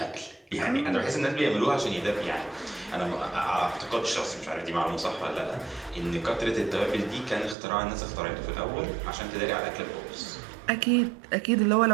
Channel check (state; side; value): drops out; left; at 7.6 s